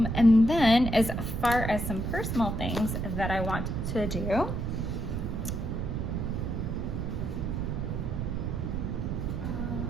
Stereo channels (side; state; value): right; noise; rumble, 2 dB below the sound